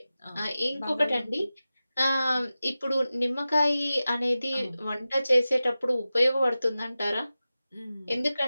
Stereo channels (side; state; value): both; inverted; correlation -0.95